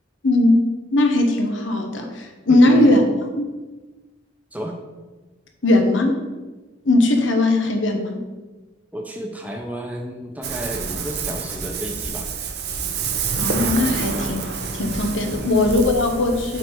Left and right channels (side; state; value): both; normal; correlation 0.62